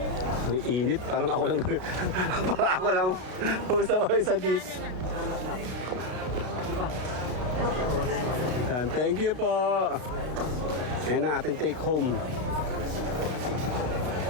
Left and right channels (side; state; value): left; late; 32 ms